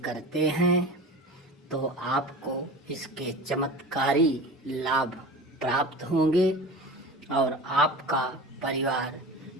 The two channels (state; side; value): normal; both; correlation 0.33